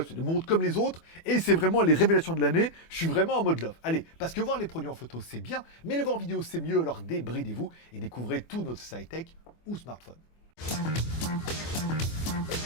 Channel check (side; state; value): right; late; 24 ms